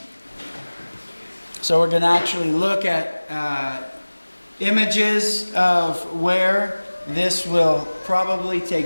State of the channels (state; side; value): inverted; both; correlation -1.00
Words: So we're going to actually look at images of where this will probably